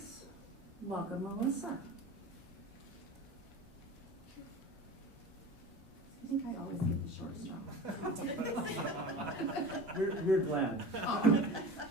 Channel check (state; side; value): normal; both; correlation 0.34